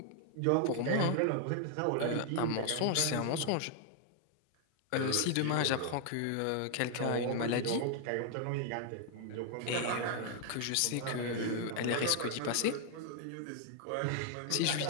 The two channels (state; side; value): different; both; correlation 0.00